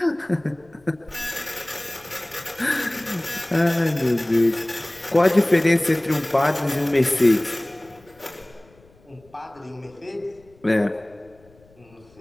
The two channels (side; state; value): left; noise; rumble, 29 dB below the sound